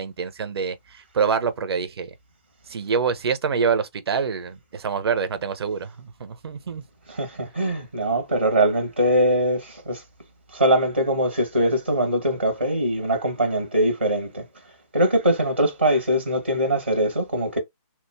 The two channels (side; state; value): both; inverted; correlation -0.49